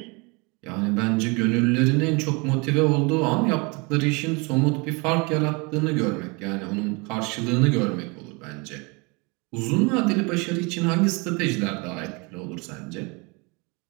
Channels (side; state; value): left; quieter; 29.0 dB